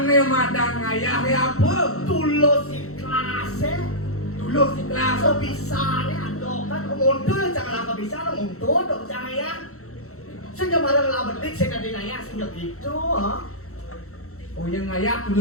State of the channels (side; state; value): right; late; 0.64 ms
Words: madang ngayah ya apa? Tulus ikhlasnya. Tulus ikhlas. So bisa nih adokan mundur jangan apa bisa lo mundur dong jangan ya. Sehingga barang lah betik saya kadang ngayah sehingga gitu ha. Oh yang ngayah